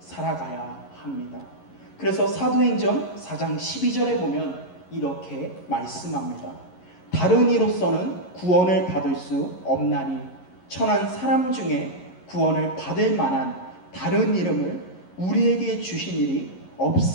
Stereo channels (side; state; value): right; late; 11 ms